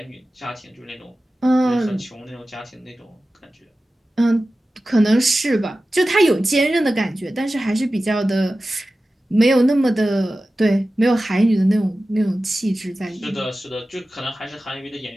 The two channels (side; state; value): both; normal; correlation 0.95